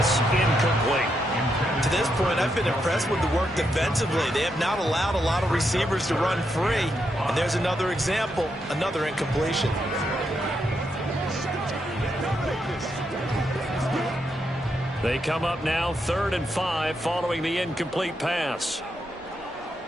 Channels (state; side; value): normal; both; correlation 0.81